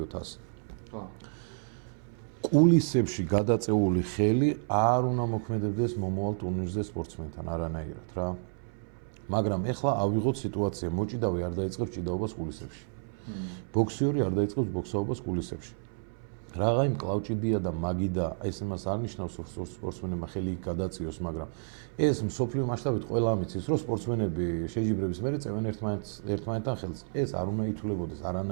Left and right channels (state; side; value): silent; left; 57 dB below the other